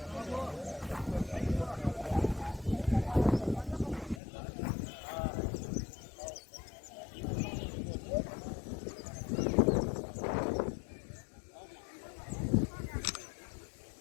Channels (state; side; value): drops out; right; at 4.2 s